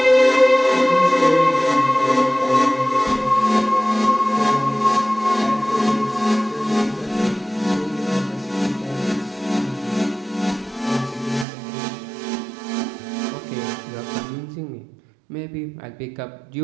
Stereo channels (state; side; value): drops out; left; at 11.5 s